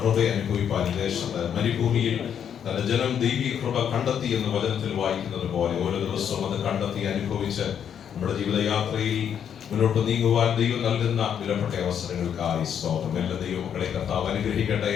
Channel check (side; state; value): right; quieter; 8.5 dB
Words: അനുഭവിപ്പാൻ ദേശത്ത് മരുഭൂമിയിൽ തന്റെ ജനം ദൈവീക കൃപ കണ്ടെത്തി എന്ന് വചനത്തിൽ വായിക്കുന്നത് പോലെ ഓരോ ദിവസവും അത് കണ്ടെത്തി അനുഭവിച്ച് നമ്മുടെ ജീവിതയാത്രയിൽ മുന്നോട്ട് നീങ്ങുവാൻ ദൈവം നൽകുന്ന വിലപ്പെട്ട അവസരങ്ങൾക്കായി സ്തോത്രം. എല്ലാ ദൈവമക്കളെ കർത്താവ് അനുഗ്രഹിക്കട്ടെ.